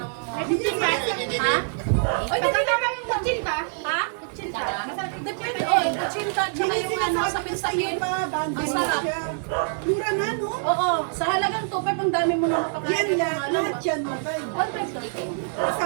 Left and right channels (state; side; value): silent; left; 62 dB below the other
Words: Ha? Oy, dali naman yung kutsinta. Ha? Kutsinta. Depende, oy, kutsinta. Tsaka yung ano, sapin-sapin. Ang sarap. Mura na, no? Oo, sa halagang 2.5, ang dami mo na Yan makakain. lahat yan, mabay. 1.5 lang.